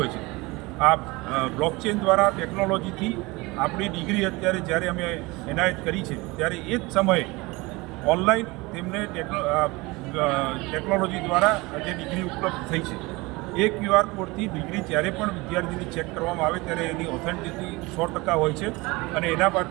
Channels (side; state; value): left; quieter; 23.4 dB